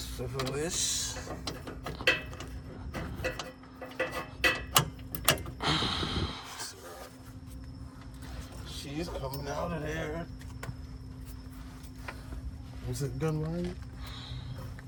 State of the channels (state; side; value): identical; both; correlation 1.00